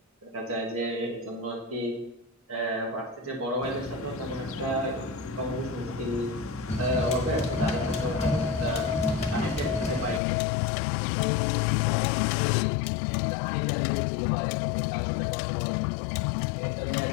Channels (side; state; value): right; drops out; at 10.2 s